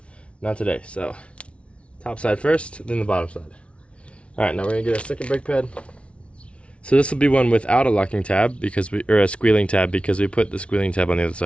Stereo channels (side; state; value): right; late; 0.061 ms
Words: Not today, so top side first, then the bottom side. Alright, now we're gonna get a second brake pad. So this will be one without a locking tab or a squealing tab, because we put the squealing tab on the other